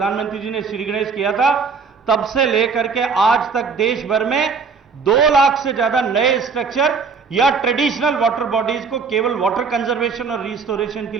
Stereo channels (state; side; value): quieter; left; 5.3 dB